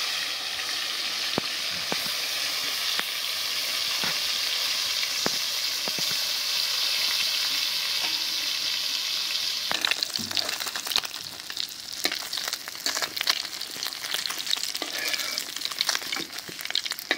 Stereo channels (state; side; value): identical; both; correlation 1.00